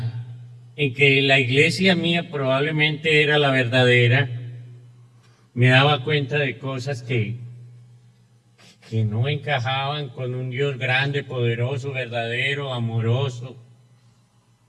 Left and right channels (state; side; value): identical; both; correlation 1.00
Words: que la iglesia mía probablemente era la verdadera, me daba cuenta de cosas que no encajaban con un Dios grande, poderoso, verdadero, amoroso.